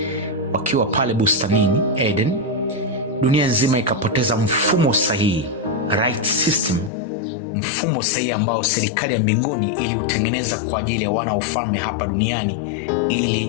wakiwa pale bustanini Eden, dunia nzima ikapoteza mfumo sahihi, right system, mfumo sahihi ambao serikali ya mbinguni iliutengeneza kwa ajili ya wana wa ufalme hapa duniani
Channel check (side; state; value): right; drops out; at 6.9 s